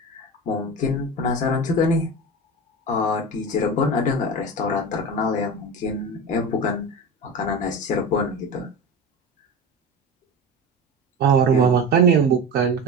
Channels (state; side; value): normal; both; correlation 0.27